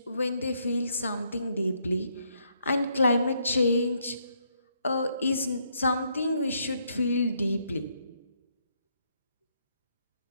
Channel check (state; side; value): inverted; both; correlation -0.74